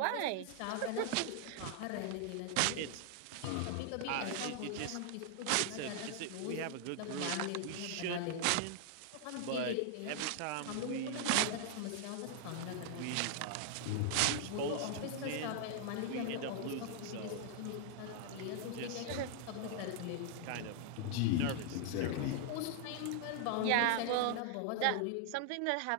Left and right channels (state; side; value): different; both; correlation 0.00